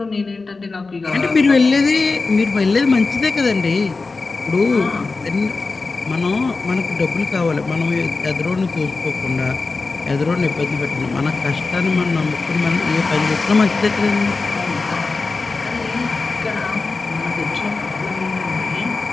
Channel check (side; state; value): right; quieter; 3.9 dB